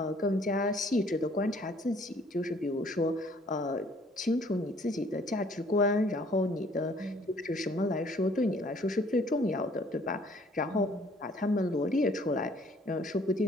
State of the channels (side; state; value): both; normal; correlation 0.59